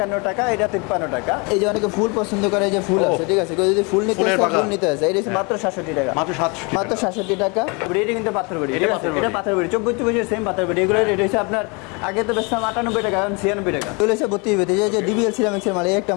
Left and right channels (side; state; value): right; quieter; 30.5 dB